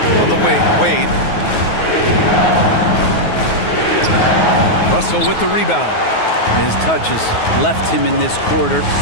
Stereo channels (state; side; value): late; right; 9.4 ms